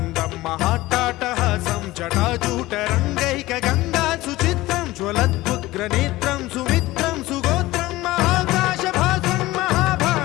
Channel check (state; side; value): quieter; right; 18.2 dB